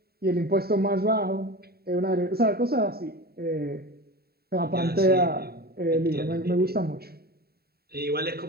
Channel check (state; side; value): late; left; 0.45 ms